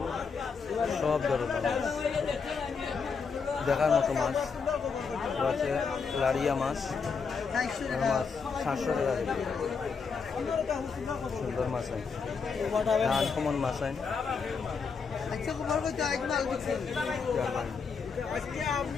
সব ধরনের মাছ দেখার মতো মাছ আছে লাড়িয়া মাছ 400 মাছ 700 টাকা কেজি সুন্দর মাছ আছে আনকমন মাছ আছে আচ্ছা খবর কইতে আজ মাল দিছেন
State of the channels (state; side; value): quieter; right; 5.4 dB